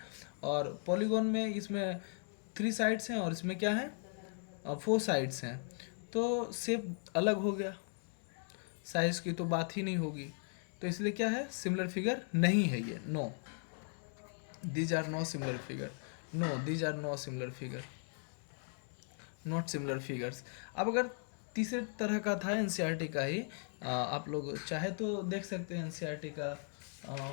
और पॉलीगॉन में इसमें 3 साइड्स हैं और इसमें क्या है, 4 साइड्स हैं, तो शेप अलग हो गया, साइज की तो बात ही नहीं होगी, तो इसलिए क्या है, सिमिलर फिगर नहीं है ये। No, these are no similar figure, no these are no similar figure, not similar figures. अब अगर तीसरे तरह का था एनसीईआरटी का ही, आप लोग चाहे तो देख सकते हैं एनसीईआरटी का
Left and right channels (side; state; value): right; silent; 53 dB below the other